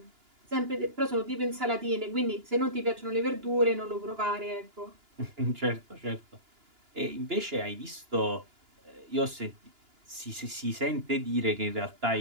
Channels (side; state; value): left; late; 2.9 ms